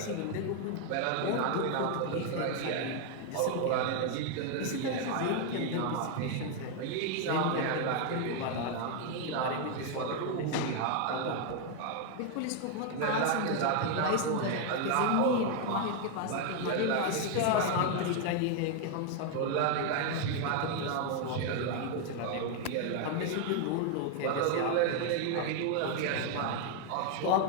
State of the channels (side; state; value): both; different; correlation 0.00